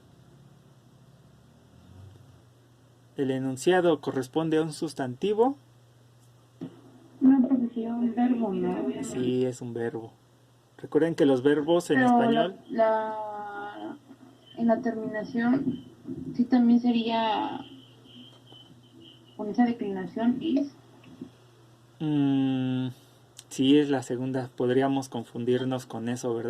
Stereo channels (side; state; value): both; identical; correlation 1.00